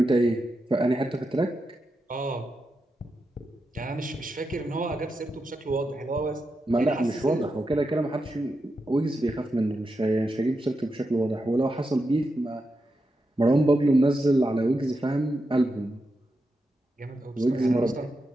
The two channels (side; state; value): both; normal; correlation 0.87